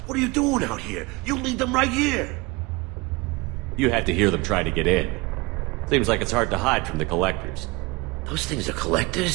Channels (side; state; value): left; quieter; 24.6 dB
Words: What are you doing out here? You lead them right here. You had to hear them try to get in. Seems like it's hard to hide from the collectors. Those things are